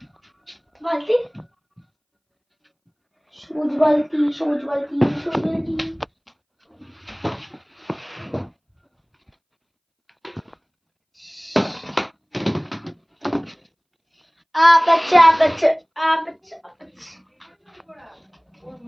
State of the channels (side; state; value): both; identical; correlation 1.00